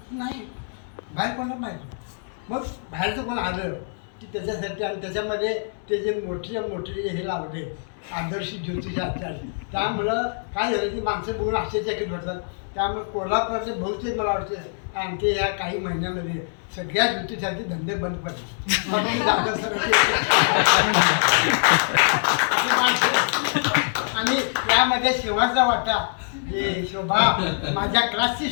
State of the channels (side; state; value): right; silent; digital silence